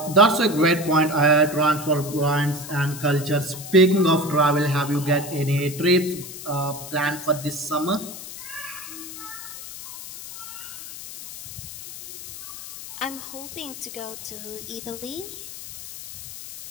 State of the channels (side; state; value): left; noise; hiss, 12 dB below the sound